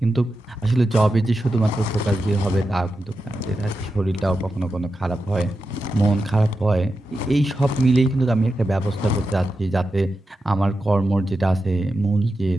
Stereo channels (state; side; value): normal; both; correlation 0.90